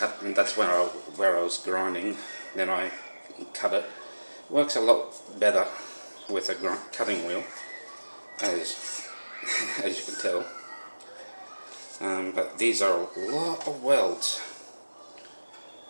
and that's where I was grinding. Then I cut it. It works a lot better with a cutting wheel, as you can tell. But these are a lot of welds.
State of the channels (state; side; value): inverted; both; correlation -1.00